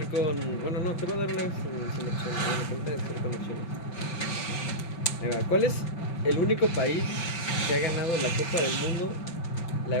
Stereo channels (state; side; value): late; right; 5.9 ms